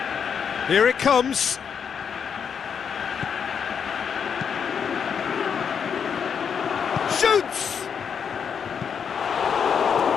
Here it comes. Shoots!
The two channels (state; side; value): quieter; right; 7.1 dB